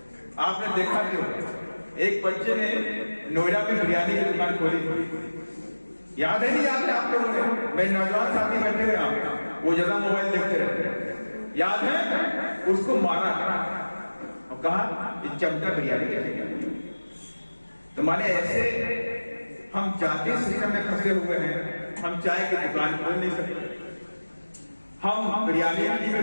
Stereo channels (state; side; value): inverted; both; correlation -1.00